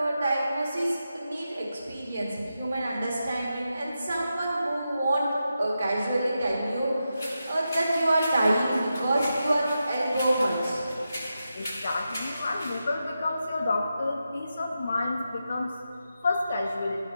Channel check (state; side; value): inverted; both; correlation -0.89